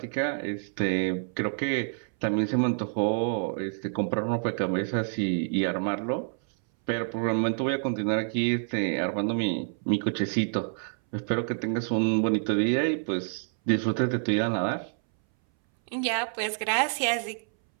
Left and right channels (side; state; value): left; silent; 60 dB below the other